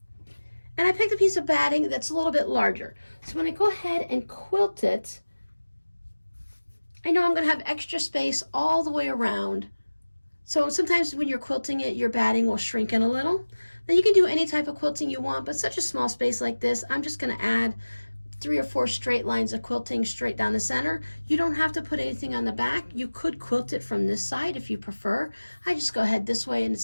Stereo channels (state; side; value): inverted; both; correlation -1.00